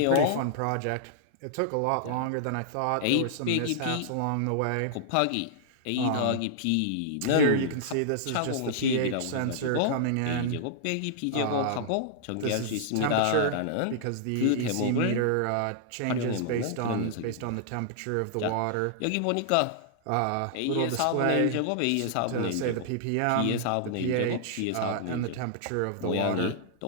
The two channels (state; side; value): different; both; correlation -0.01